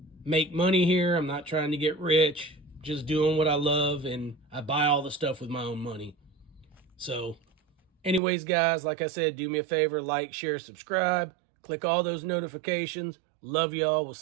make money here. I'm not trying to get rich. Just doing what I love, and I buy all the stuff with my own money. So, anyways, guys, like I said, do me a favor. Like, share, subscribe. Click all those notifications. Love y'all. We'll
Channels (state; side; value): drops out; left; at 8.2 s